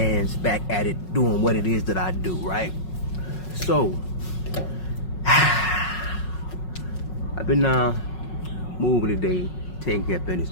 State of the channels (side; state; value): right; late; 5.4 ms